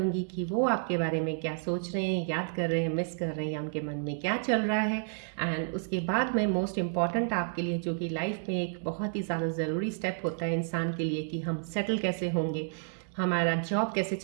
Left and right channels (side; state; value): left; silent; digital silence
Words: कि वो आपके बारे में क्या सोच रहे हैं, याद कर रहे हैं, मिस कर रहे हैं या उनके मन में क्या चल रहा है। एंड उसके बाद मैं मोस्ट इम्पॉर्टेंट आपके लिए, जो कि लाइफ में एक बहुत ही ज़्यादा ज़रूरी स्टेप होता है इंसान के लिए, कि हम सेटल कैसे होंगे, हमारा जॉब कैसे